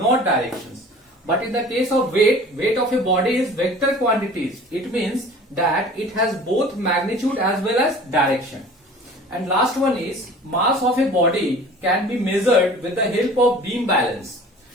directions. But in the case of weight, weight of a body is vector quantities. It means that it has both magnitude as well as direction. And last one is mass of a body can be measured with the help of beam balance.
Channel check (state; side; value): normal; both; correlation 0.44